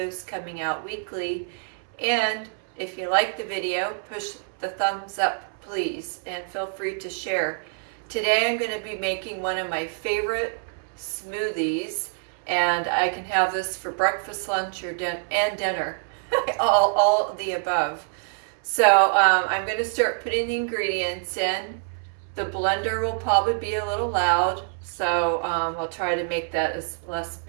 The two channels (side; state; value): left; silent; 61 dB below the other